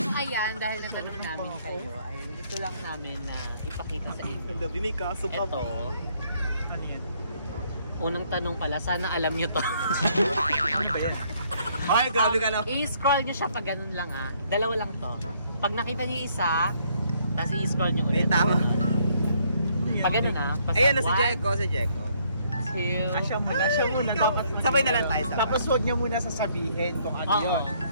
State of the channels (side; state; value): both; inverted; correlation -0.67